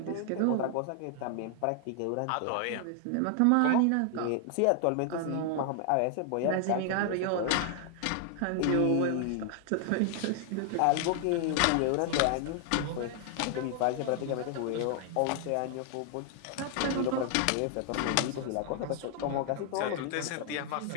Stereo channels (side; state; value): both; different; correlation 0.00